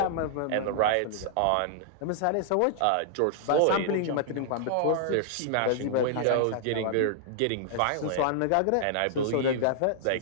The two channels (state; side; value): different; both; correlation -0.01